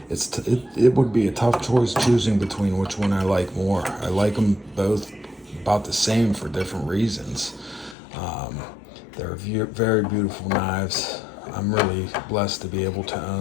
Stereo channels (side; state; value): right; drops out; at 8.0 s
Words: It would be a tough choice choosing between which one I like more. I like them both about the same for different reasons. They're very beautiful knives. I'm really blessed to be able to